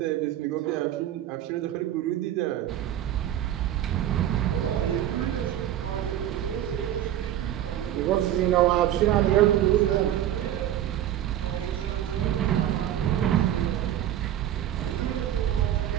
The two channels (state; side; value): quieter; left; 11.8 dB